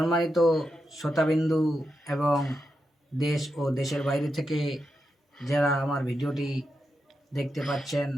শ্রোতাবিন্দু এবং দেশ ও দেশের বাইরে থেকে যারা আমার ভিডিওটি দেখতে পাচ্ছেন,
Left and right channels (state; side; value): normal; both; correlation 0.87